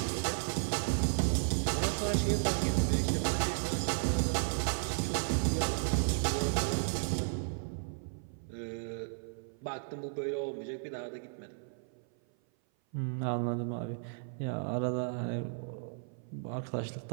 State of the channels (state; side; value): silent; left; 55 dB below the other